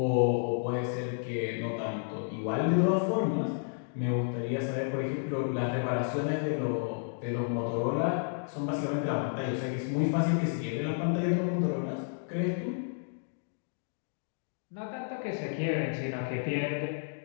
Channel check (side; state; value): right; silent; digital silence